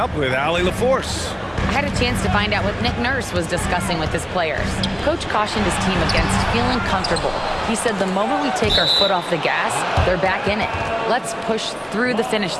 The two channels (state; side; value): identical; both; correlation 1.00